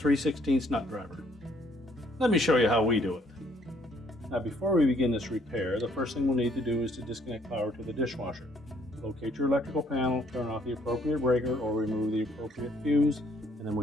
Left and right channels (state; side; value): normal; both; correlation 0.64